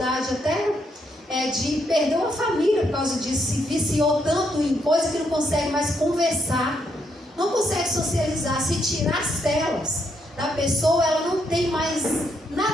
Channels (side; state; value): both; normal; correlation 0.76